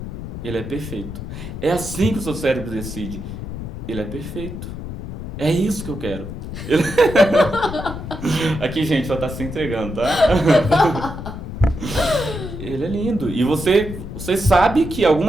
ele é perfeito. É assim que o seu cérebro decide, ele é perfeito. É isso que eu quero. Aqui, gente, só tá se entregando, tá? Ele é lindo. E você sabe que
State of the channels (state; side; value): noise; left; rumble, 8 dB below the sound